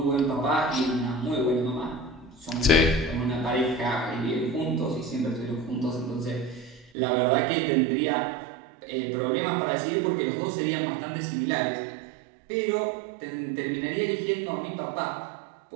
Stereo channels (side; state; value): left; drops out; at 6.9 s